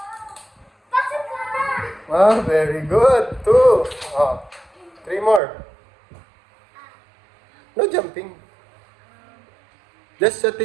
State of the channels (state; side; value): drops out; left; at 5.4 s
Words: Oh, very good. 2. Oh, 3 more. No jumping. Just